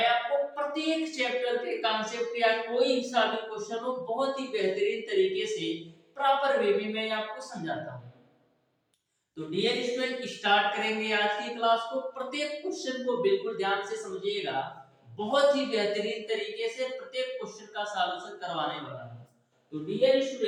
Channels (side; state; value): both; identical; correlation 1.00